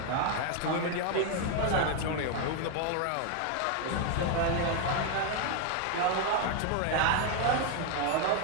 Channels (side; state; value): both; different; correlation 0.01